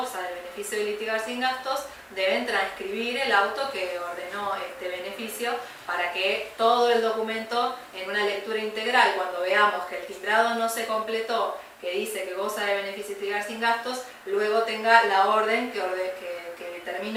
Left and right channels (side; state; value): both; identical; correlation 1.00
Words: del beneficio de litigar sin gastos, deben transcribir el auto que ordenó este beneficio para que todo el documento, en una lectura integral, cuando veamos que el timbrado no se completó, que dice que goza de beneficio de litigar sin gastos, luego tenga la orden que